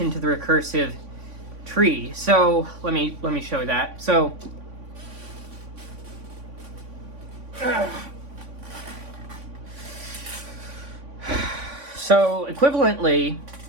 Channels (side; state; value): left; late; 3.5 ms